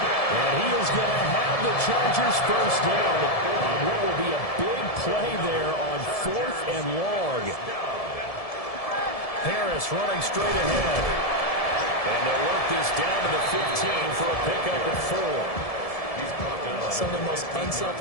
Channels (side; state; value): right; late; 1.7 ms